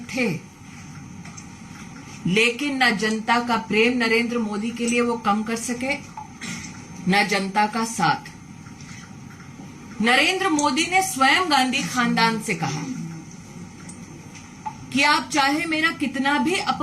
थे, लेकिन न जनता का प्रेम नरेंद्र मोदी के लिए वो कम कर सके, न जनता का साथ। नरेंद्र मोदी ने स्वयं गांधी खानदान से कहा कि आप चाहे मेरा कितना भी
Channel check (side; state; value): both; identical; correlation 1.00